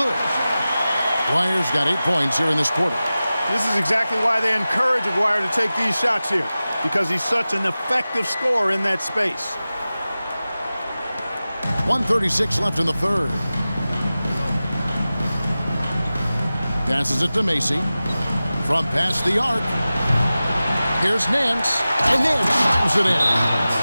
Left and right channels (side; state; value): both; inverted; correlation -0.96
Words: Aguirre's got 8 points here in this quarter. This is exactly why they encourage Aguirre to take these shots here, because he's such an effective scorer in that space. 1:36 left in the third. Passes it to Macy. From past the arc. Here's Nance, and Nance slams it in.